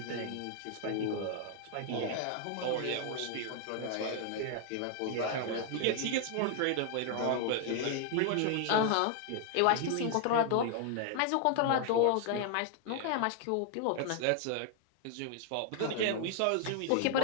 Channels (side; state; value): both; different; correlation 0.00